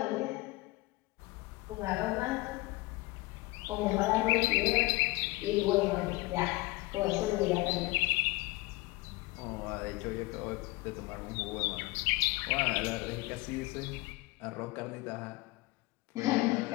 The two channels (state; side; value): quieter; right; 21.7 dB